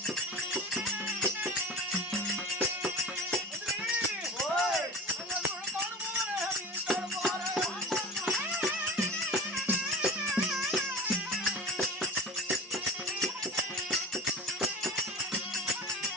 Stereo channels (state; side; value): normal; both; correlation 0.36